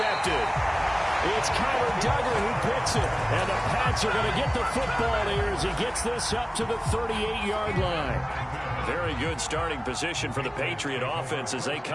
It's Kyler Duggar who picks it. And the Pats are going to get the football here as he gets this up to the 38-yard line. Very good starting position for the Patriot offense as they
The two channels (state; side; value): identical; both; correlation 1.00